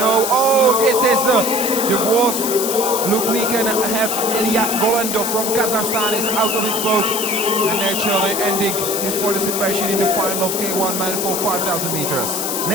oh, this is the worst look we can have. Ilya Golendo from Kazakhstan is out of his boat and naturally ending his participation in the final of K1 man for 5000 meters.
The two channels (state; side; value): noise; left; hiss, 2 dB below the sound